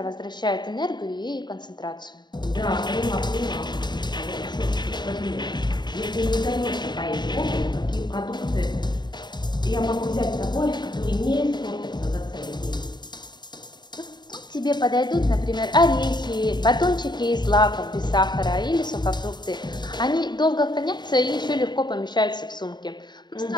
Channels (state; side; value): late; right; 0.21 ms